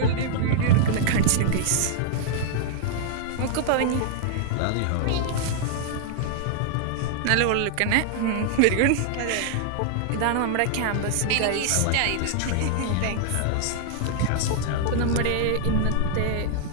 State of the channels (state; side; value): different; both; correlation -0.01